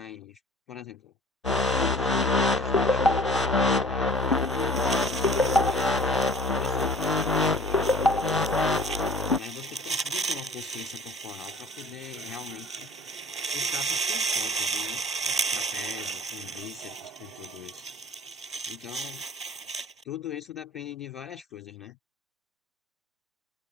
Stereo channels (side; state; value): both; normal; correlation 0.48